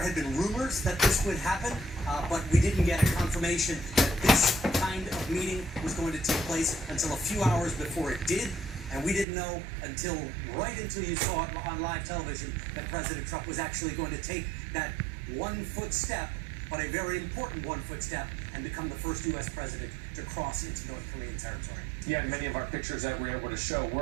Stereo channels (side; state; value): left; drops out; at 9.2 s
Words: been rumors that this would happen, but we didn't get a confirmation that this kind of meeting was going to take place until a few hours before it did. And we didn't know right until you saw it on live television that President Trump was actually going to take that 1 foot step, but a very important 1 foot step, and become the first U.S. president to cross into North Korean territory. Yeah, and many of our pictures that we were able to show